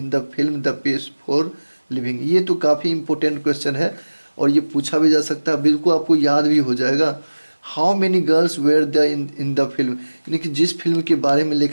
the film the pace for living. ये तो काफ़ी इंपॉर्टेंट क्वेश्चन है और ये पूछा भी जा सकता है, बिल्कुल आपको याद भी हो जाएगा। How many girls were the in the film, यानी कि जिस फिल्म के बारे में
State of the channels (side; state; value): both; inverted; correlation -1.00